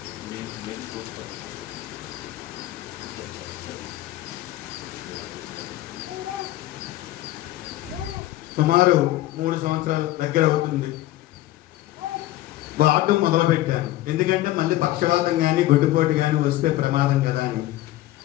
సుమారు 3 సంవత్సరాల దగ్గర అవుతుంది వాడటం మొదలుపెట్టాను. ఎందుకంటే మళ్ళీ పక్షవాతం కానీ గుడ్డుపోటు కానీ వస్తే ప్రమాదం కదా అని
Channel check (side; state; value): right; quieter; 15.7 dB